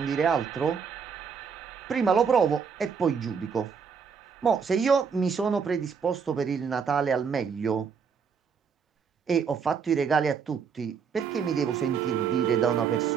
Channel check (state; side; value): quieter; left; 6.2 dB